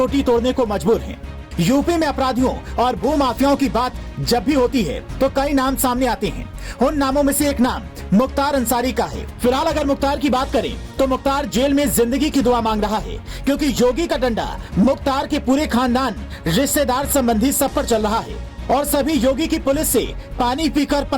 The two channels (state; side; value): identical; both; correlation 1.00